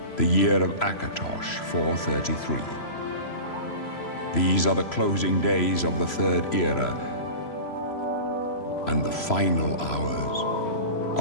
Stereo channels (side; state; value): right; late; 3.0 ms